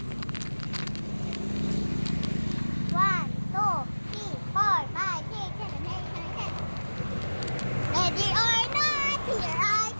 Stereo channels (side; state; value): both; inverted; correlation -1.00